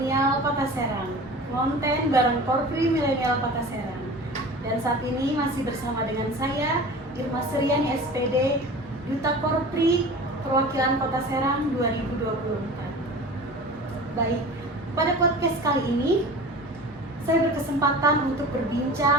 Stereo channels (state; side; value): normal; both; correlation 0.37